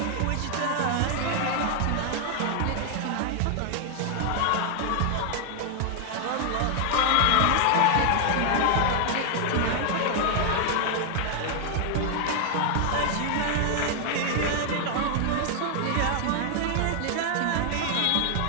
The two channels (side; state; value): both; different; correlation 0.00